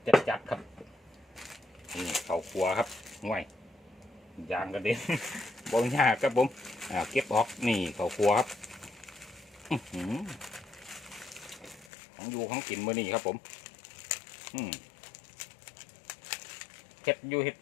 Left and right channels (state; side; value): drops out; right; at 11.9 s